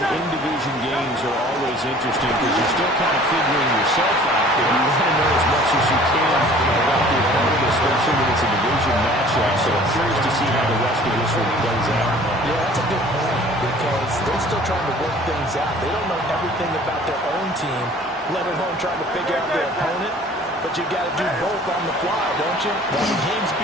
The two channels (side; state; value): both; normal; correlation 0.50